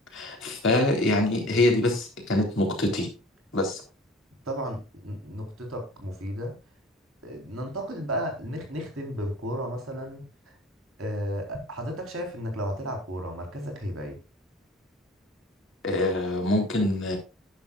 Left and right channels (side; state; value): both; normal; correlation 0.45